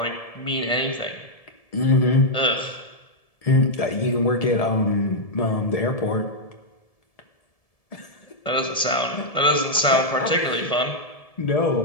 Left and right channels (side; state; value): right; late; 1.7 ms